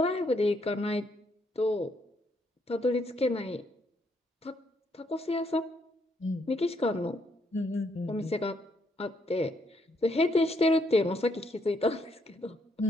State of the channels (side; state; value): both; normal; correlation 0.74